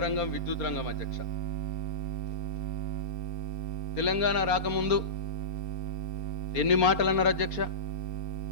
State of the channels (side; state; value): right; late; 4.3 ms